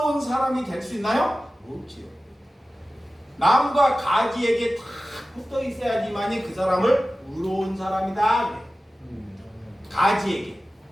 사람이 될 수 있나요? 없지요. 나무가 가지에게 다 붙어 있어야지만이 그 사람을 의로운 사람이다. 가지에게.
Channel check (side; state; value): both; normal; correlation 0.95